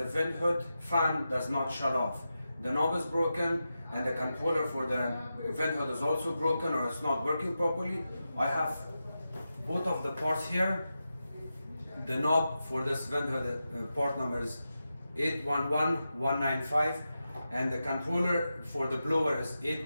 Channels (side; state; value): both; inverted; correlation -0.90